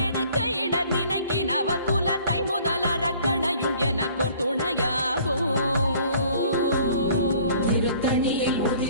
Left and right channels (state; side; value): inverted; both; correlation -0.55